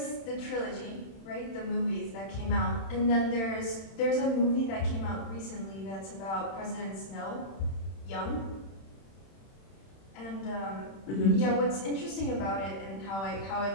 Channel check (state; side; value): late; right; 31 ms